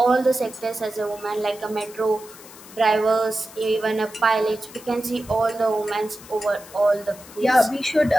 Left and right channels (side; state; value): left; noise; hiss, 19 dB below the sound